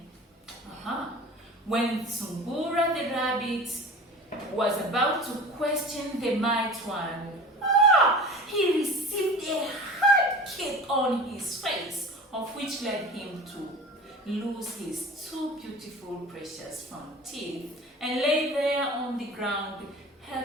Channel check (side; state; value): both; normal; correlation 0.38